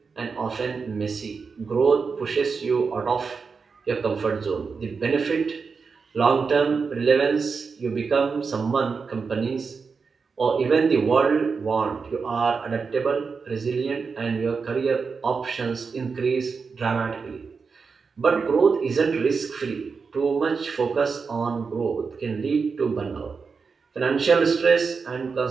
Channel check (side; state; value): left; quieter; 5.1 dB